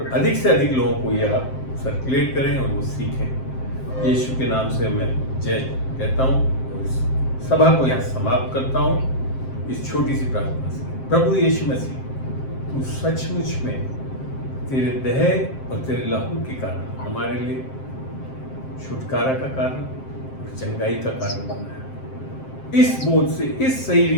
अधिक से अधिक लोगों को ये आप सर्कुलेट करें और वो सीखें। यीशु के नाम से मैं जय कहता हूँ और इस सभा को यहाँ समाप्त करता हूँ इस छोटी सी प्रार्थना से। प्रभु यीशु मसीह, तू सचमुच में तेरे देह और तेरे लहू के कारण हमारे लिए छुटकारा का कारण और चंगाई का कारण बना है। इस बोध से, इस सही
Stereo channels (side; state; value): right; late; 7.6 ms